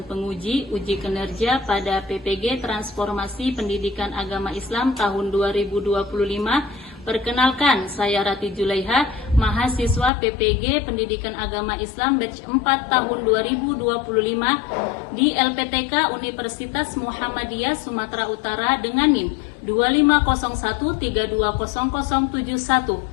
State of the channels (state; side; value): drops out; right; at 10.1 s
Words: penguji uji kinerja pada PPG Transformasi Pendidikan Agama Islam tahun 2025. Perkenalkan, saya Rati Julaiha, mahasiswa PPG Pendidikan Agama Islam batch 4 tahun 2025 di LPTK Universitas Muhammadiyah Sumatera Utara dengan NIM